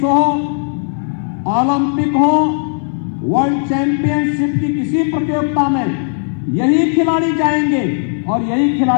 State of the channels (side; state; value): right; silent; digital silence